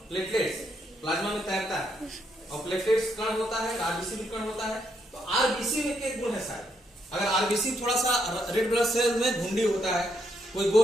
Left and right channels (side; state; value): both; normal; correlation 0.77